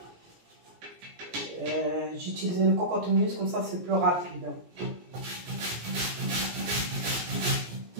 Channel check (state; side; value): late; left; 17 ms